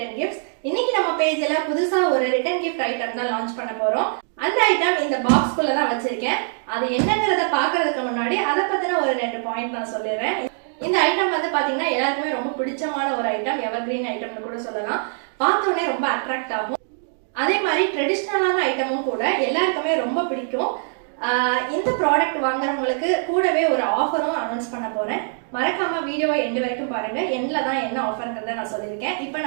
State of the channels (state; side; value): silent; left; 63 dB below the other